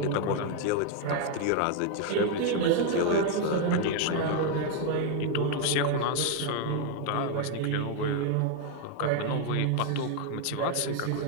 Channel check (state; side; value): different; both; correlation 0.00